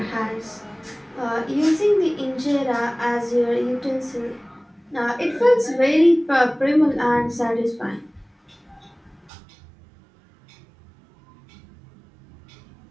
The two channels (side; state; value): left; drops out; at 9.3 s